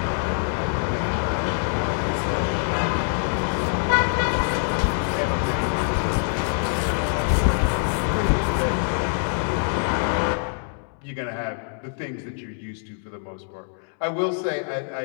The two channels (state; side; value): silent; right; 62 dB below the other